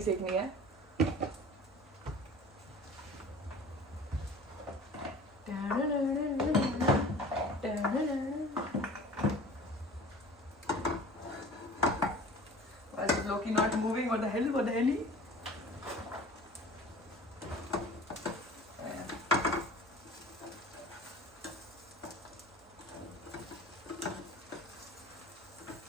सेकनी है. Why is Loki not moving? What the hell? What the hell?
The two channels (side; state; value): both; normal; correlation 0.42